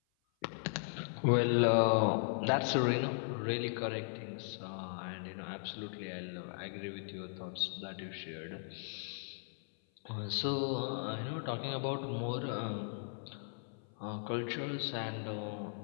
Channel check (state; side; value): silent; right; 53 dB below the other